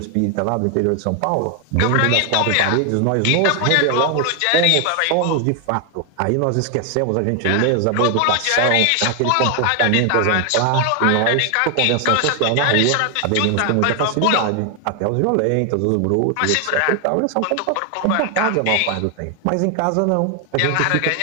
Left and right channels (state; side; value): different; both; correlation 0.00